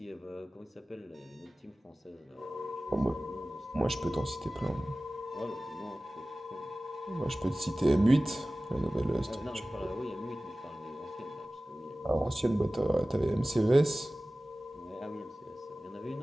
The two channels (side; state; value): both; normal; correlation 0.97